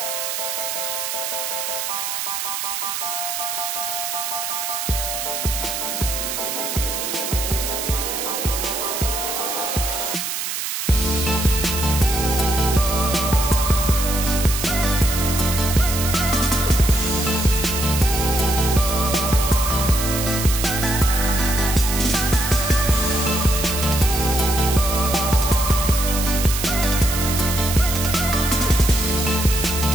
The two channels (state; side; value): noise; right; hiss, 3 dB below the sound